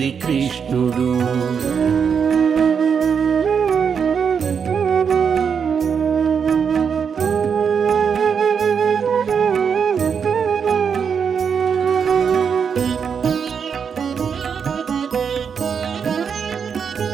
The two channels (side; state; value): left; quieter; 6.7 dB